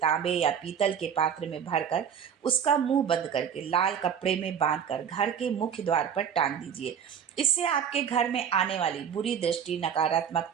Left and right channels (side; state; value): left; quieter; 8.0 dB